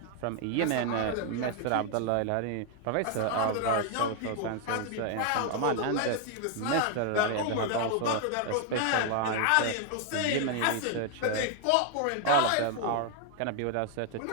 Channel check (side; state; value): both; different; correlation 0.00